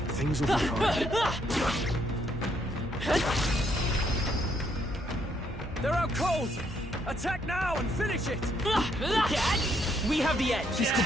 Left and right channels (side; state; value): both; normal; correlation 0.72